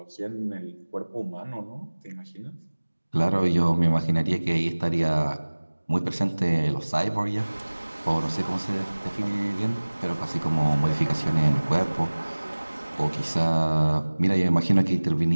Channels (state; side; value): inverted; both; correlation -1.00